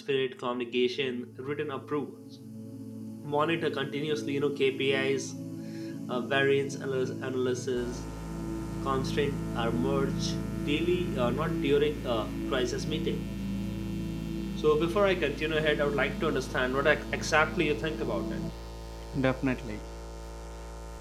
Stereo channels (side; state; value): both; identical; correlation 1.00